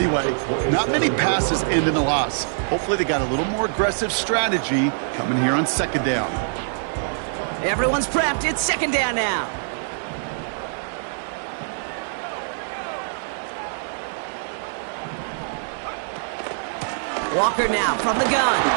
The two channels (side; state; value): left; silent; digital silence